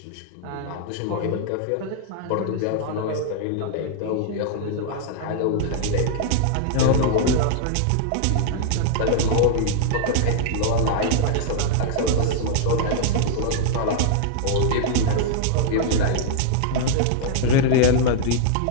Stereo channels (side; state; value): both; different; correlation -0.01